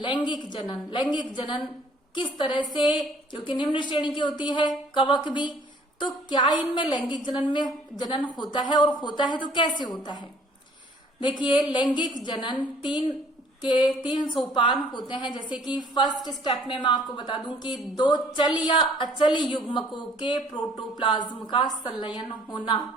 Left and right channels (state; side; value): normal; both; correlation 0.58